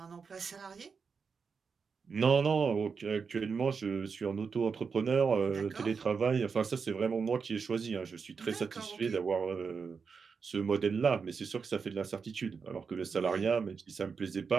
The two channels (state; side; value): quieter; left; 5.6 dB